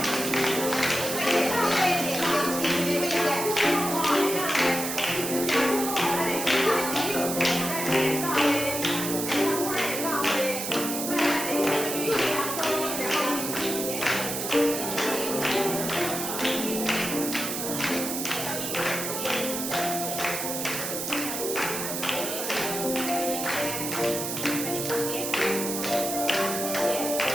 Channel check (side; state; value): right; noise; hiss, 3 dB below the sound